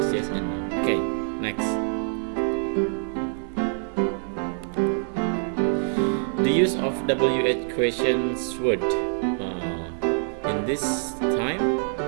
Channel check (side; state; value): left; silent; 61 dB below the other